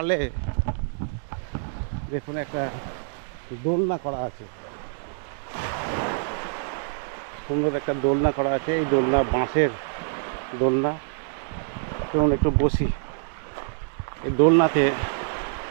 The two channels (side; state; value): left; silent; digital silence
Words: দেখুন একটা দোলনা করা আছে, সুন্দর একটা দোলনা করা আছে। এই দোলনা বাঁশের দোলনা। চলুন একটু বসি এই দোলনাতে।